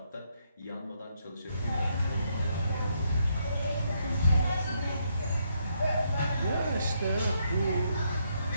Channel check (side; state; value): both; inverted; correlation -0.76